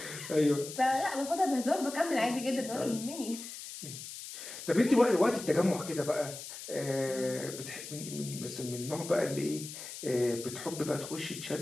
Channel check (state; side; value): noise; left; hiss, 11 dB below the sound